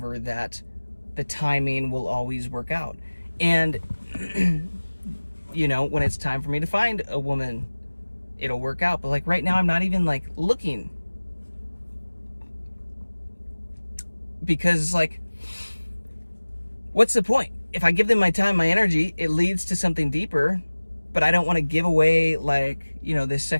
that the timing will always work out. And you know, when it's time for me to find a woman, it'll work out. But like right now, I'm not even like looking, because it's like, what's the point? If I give them my time, my energy, it leads to something deeper, but I don't want to give away, like, you know, this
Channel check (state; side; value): inverted; both; correlation -1.00